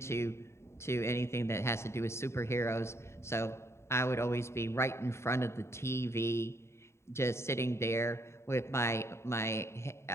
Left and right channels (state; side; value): late; right; 0.13 ms